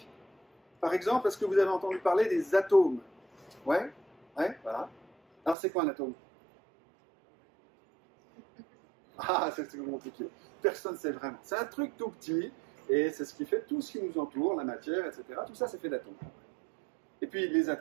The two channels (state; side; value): drops out; left; at 5.6 s